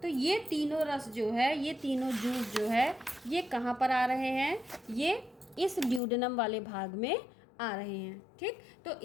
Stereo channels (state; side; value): drops out; right; at 6.0 s